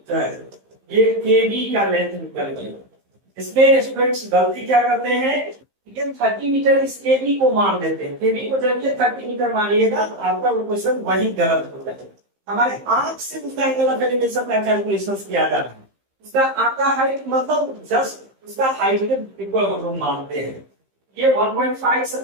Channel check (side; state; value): left; late; 15 ms